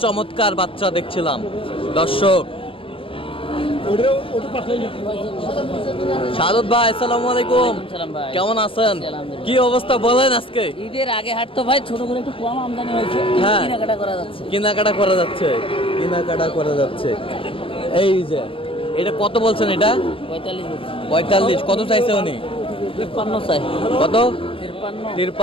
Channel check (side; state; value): right; late; 0.26 ms